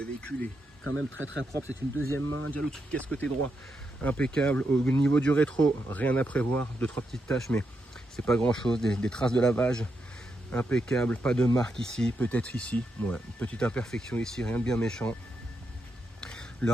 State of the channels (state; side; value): normal; both; correlation 0.83